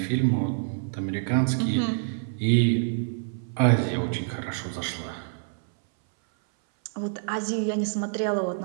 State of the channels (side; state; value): left; silent; 59 dB below the other